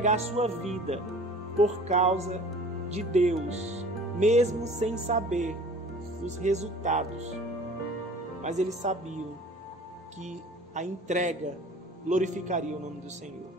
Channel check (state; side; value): normal; both; correlation 0.45